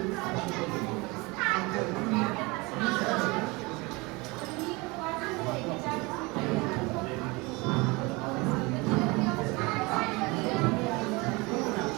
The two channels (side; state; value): left; quieter; 25.2 dB